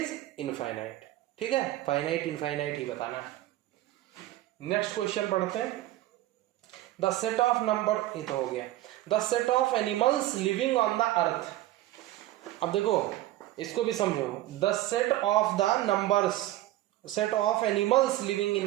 infinite। ठीक है, फाइनाइट इनफाइनाइट ही बताना है। नेक्स्ट क्वेश्चन पढ़ते हैं, द सेट ऑफ नंबर, ये तो हो गया, the set of animals living on the earth. अब देखो इसको भी समझो, the set of the numbers, set of animals living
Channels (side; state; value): left; quieter; 15.4 dB